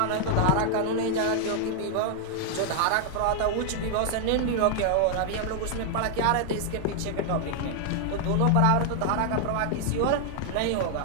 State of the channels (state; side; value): different; both; correlation 0.00